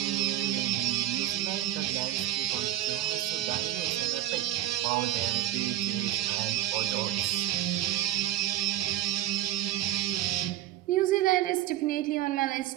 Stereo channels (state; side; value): quieter; left; 13.8 dB